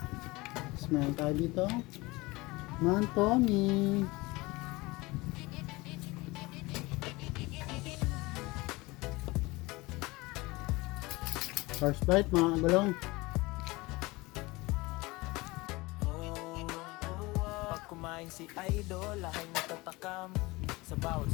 Tapos meron tayo dito. Mantomi. First bite mga kagulong. Pag kumain si Idol, lahat natatakam. Sa bawat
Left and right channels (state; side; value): quieter; right; 22.4 dB